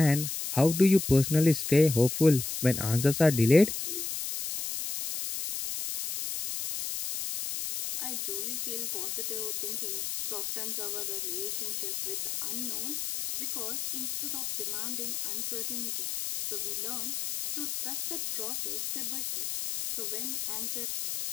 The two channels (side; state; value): left; noise; hiss, 4 dB below the sound